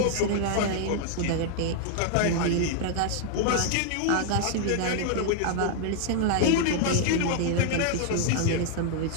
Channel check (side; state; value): both; different; correlation 0.00